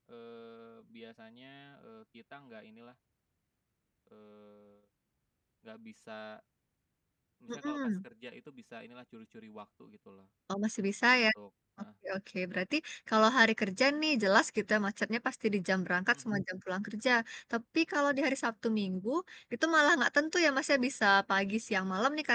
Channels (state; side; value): identical; both; correlation 1.00